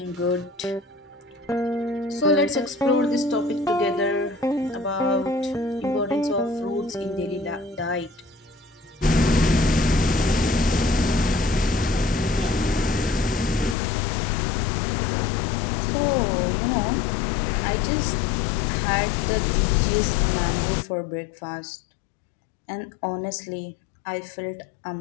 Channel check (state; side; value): drops out; right; at 13.8 s